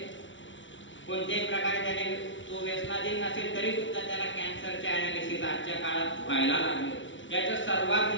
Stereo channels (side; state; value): right; late; 0.55 ms